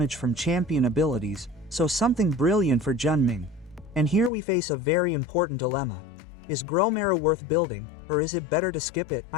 from champion abilities, so something brilliant for Junming. And here we face a very important dilemma. Is Gromara worth building, or is it better to skip it?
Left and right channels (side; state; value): right; drops out; at 4.3 s